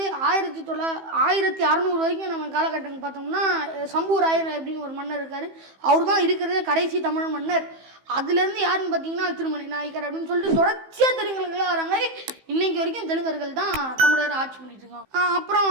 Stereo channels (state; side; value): late; left; 15 ms